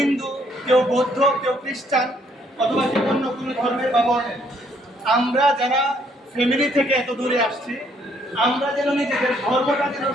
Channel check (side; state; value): both; normal; correlation 0.67